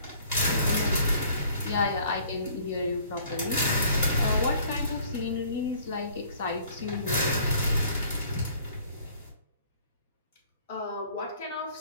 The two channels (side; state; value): both; inverted; correlation -0.56